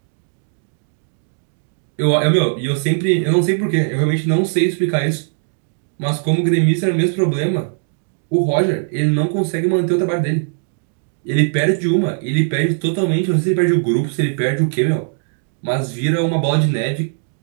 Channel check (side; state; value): left; silent; 67 dB below the other